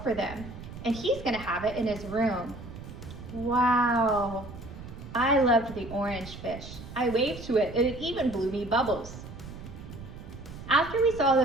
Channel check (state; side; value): noise; right; rumble, 13 dB below the sound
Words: for them. And he's gonna have it in his room. Wow, I loved the orange fish. I waved to it and it even blew me bubbles. After we saw